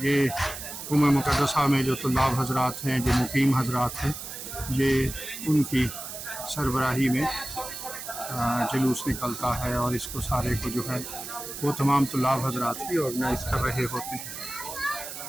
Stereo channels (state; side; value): noise; right; hiss, 9 dB below the sound